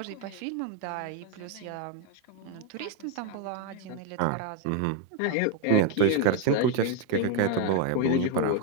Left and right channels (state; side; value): different; both; correlation 0.01